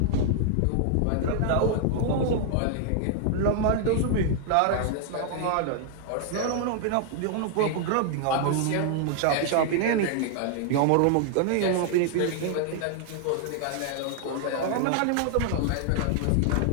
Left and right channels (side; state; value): both; different; correlation 0.00